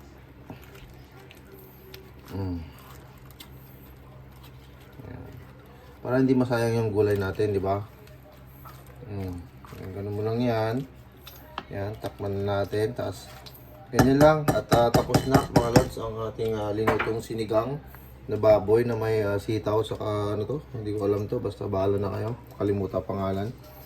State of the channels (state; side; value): identical; both; correlation 1.00